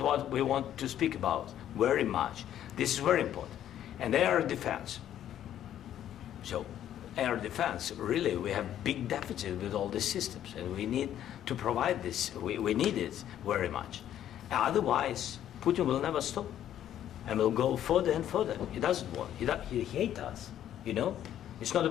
what we want to speak about very much. This is very important. And air defense. So air defense, really, we have big deficit with all these systems, and we need to provide this. We need it very much. Otherwise, Putin will never stop, and will go further and further. He doesn't want. He hates us, you know? It's not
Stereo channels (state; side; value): quieter; right; 11.1 dB